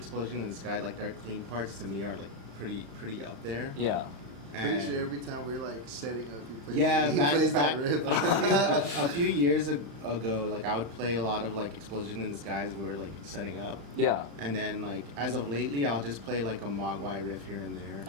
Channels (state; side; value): late; left; 36 ms